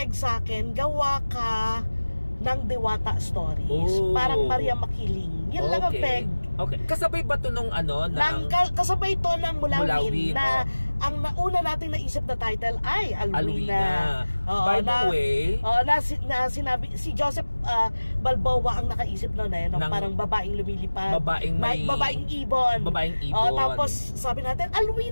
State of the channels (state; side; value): inverted; both; correlation -1.00